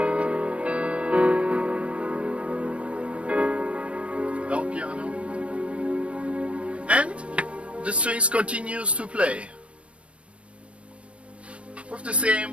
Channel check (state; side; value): late; left; 0.061 ms